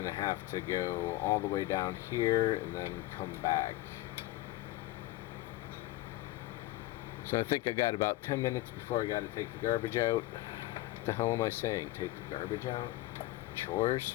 to have to go all the way down here and then come back. So I think I got about 10 minutes before I got to take the garbage out. What the hell am I saying? Take the garbage out? Chores?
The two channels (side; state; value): right; quieter; 17.2 dB